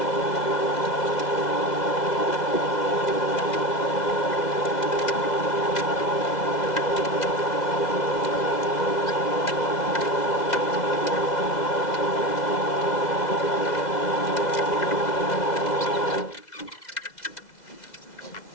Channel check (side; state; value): right; late; 2.0 ms